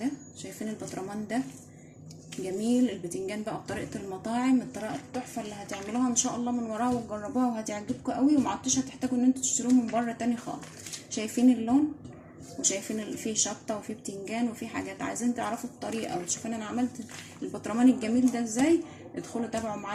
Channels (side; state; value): both; identical; correlation 1.00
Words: شايفين البطرمان ده؟ جميل. البتنجان بقى بطريقة المطاعم، الطريقة التحفة اللي هتعملوها ان شاء الله من وراها وتجربوها وهتعجبكم قوي، ومعدتوش هتحتاجوا ان انتوا تشتروه من بره تاني خالص. شايفين اللون، وشايفين فيه شطه وفيه بتنجان وفيه حاجات. عايزين تعرفوا الطريقه وتشوفوا انا عملت البطرمان الجميل ده ازاي، ادخلوا تابعوا